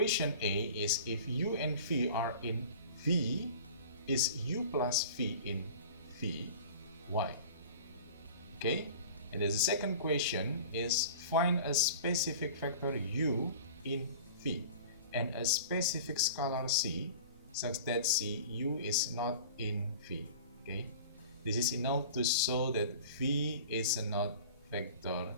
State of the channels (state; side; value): inverted; both; correlation -0.41